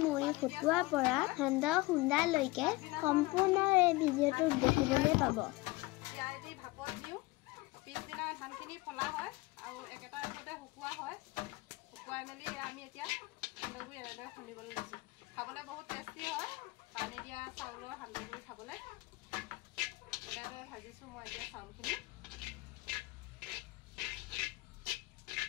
মুড়ি ফুটোৱাৰ পৰা সান্দহ খুন্দালৈকে সম্পূৰ্ণ এই ভিডিঅ'টো দেখিবলৈ পাব। পিছদিনা ধানখিনি ফলা হয় আৰু একেটা ৰূপতে শুকুওৱা হয়। শুকুৱাই মেলি আমি এতিয়া সান্দহগুড়ি এনেদৰে খুন্দিবলৈ লৈছোঁ। খাবলৈ বহুত টেষ্টি হয়। পানী দিয়া চাউলৰ সান্দহগুড়ি খাবলৈ এনেদৰে ভাজিছোঁ মই এতিয়া চাউলখিনি।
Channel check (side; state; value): right; quieter; 21.7 dB